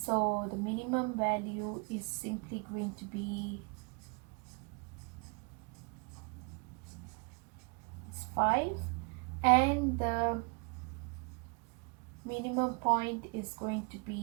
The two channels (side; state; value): left; quieter; 33.9 dB